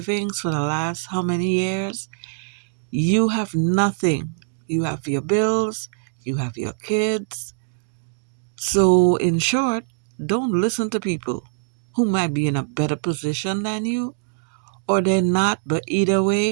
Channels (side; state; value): left; silent; digital silence